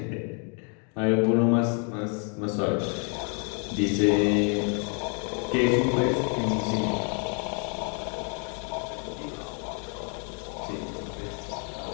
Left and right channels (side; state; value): right; quieter; 39.7 dB